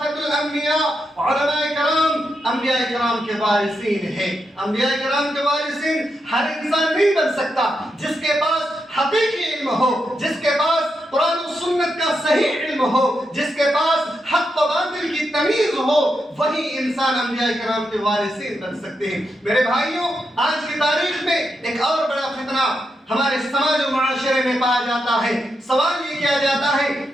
الانبیاء، علماء کرام انبیاء کرام کے وارثین ہیں۔ انبیاء کرام کے وارثین ہر انسان نہیں بن سکتا۔ جس کے پاس حقیقی علم ہو، جس کے پاس قرآن و سنت کا صحیح علم ہو، جس کے پاس حق و باطل کی تمیز ہو، وہی انسان انبیاء کرام کے وارثین بن سکتے ہیں۔ میرے بھائیوں، آج کی تاریخ میں ایک اور بڑا فتنہ ہمارے سماج و معاشرے میں پایا جاتا ہے۔ سوال یہ کیا جاتا ہے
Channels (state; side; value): normal; both; correlation 0.85